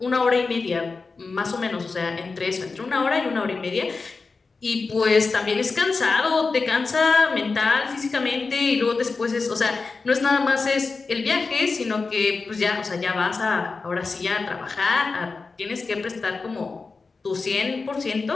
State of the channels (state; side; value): quieter; right; 4.2 dB